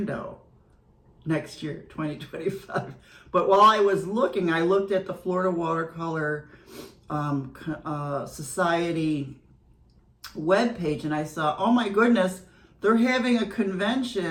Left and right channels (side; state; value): both; identical; correlation 1.00